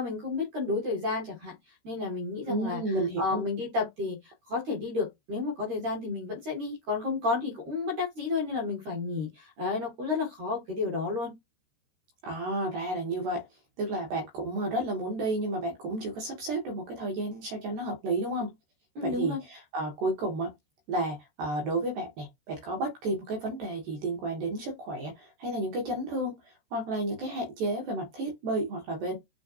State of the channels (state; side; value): late; left; 14 ms